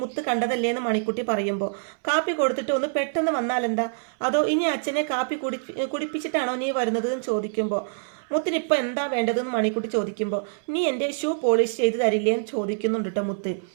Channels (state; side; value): silent; left; 61 dB below the other